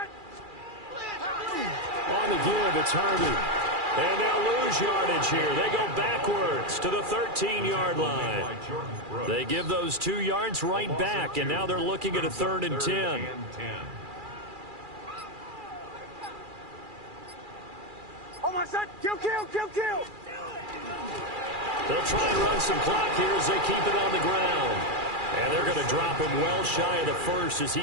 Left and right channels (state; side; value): late; left; 2.4 ms